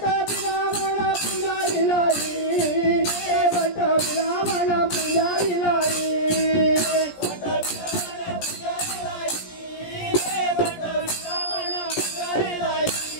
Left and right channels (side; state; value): right; late; 17 ms